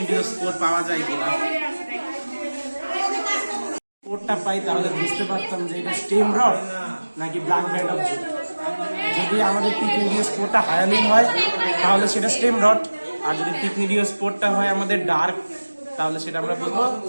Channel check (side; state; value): both; inverted; correlation -1.00